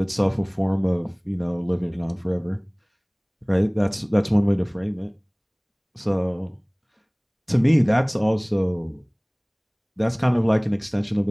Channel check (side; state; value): both; identical; correlation 1.00